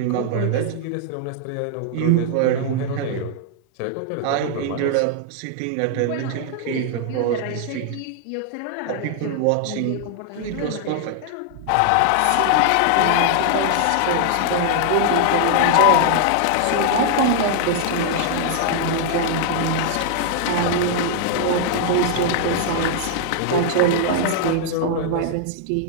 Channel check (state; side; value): different; both; correlation 0.00